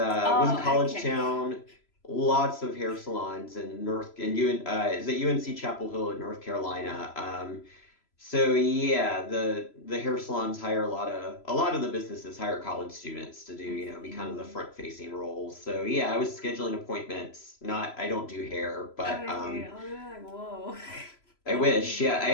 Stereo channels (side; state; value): right; late; 3.0 ms